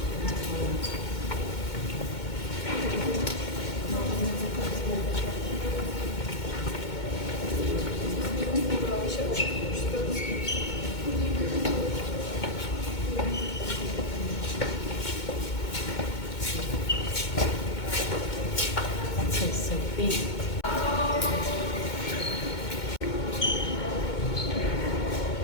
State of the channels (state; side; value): late; right; 2.2 ms